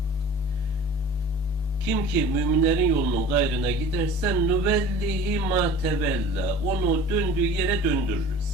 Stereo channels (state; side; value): normal; both; correlation 0.41